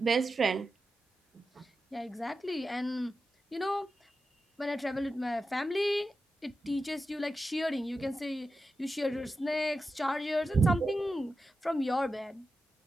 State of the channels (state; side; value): normal; both; correlation 0.91